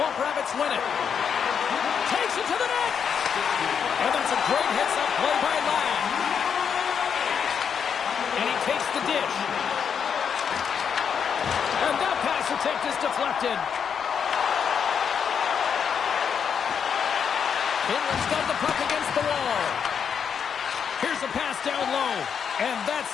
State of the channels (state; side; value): quieter; right; 7.2 dB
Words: Rabbits win it. Takes it to the net. And that's a great hits-up play by Ladd. And he takes the dish. And that pass attempt is deflected. Finland's got the puck against the wall. Here's a pass down low. And